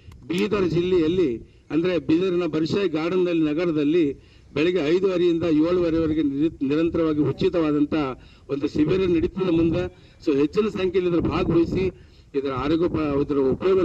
ಬೀದರ್ ಜಿಲ್ಲೆಯಲ್ಲಿ ಅಂದರೆ ಬೀದರಿನ ಬರ್ಷಾಯಿ ಗಾರ್ಡನ್ ನಗರದಲ್ಲಿ ಬೆಳಗ್ಗೆ 5:30ರಿಂದ 7:30ವರೆಗೆ ನಿರಂತರವಾಗಿ ಉಚಿತವಾದಂಥ ಒಂದು ಶಿಬಿರ ನಡೀತದೆ ಮುಂದೆ. ಸೊ ಹೆಚ್ಚಿನ ಸಂಖ್ಯೆಯಲ್ಲಿ ಇದರ ಭಾಗವಹಿಸಿ ಇದರ ಇದರ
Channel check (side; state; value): both; identical; correlation 1.00